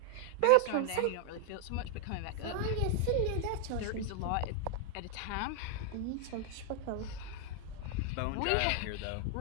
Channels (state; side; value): different; both; correlation 0.00